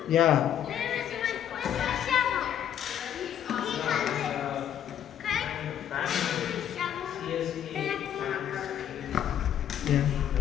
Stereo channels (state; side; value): quieter; right; 10.0 dB